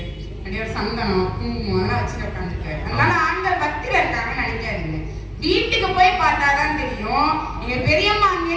அப்படியே ஒரு சந்தனம் குங்குமம் அதெல்லாம் வச்சுட்டு உட்காந்துருக்காரு. அதனால ஆண்கள் பக்தியில இருக்காங்கன்னு நினைக்காதீங்க. வீட்டுக்கு போய் பார்த்தாதான் தெரியும். நீங்க பெரியம்மா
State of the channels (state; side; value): identical; both; correlation 1.00